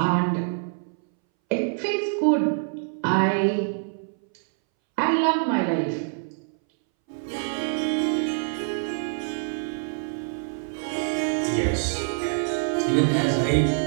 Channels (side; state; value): left; silent; 61 dB below the other